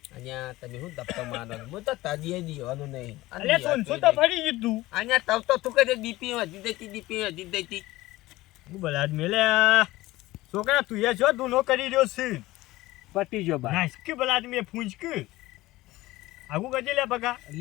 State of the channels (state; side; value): quieter; right; 18.2 dB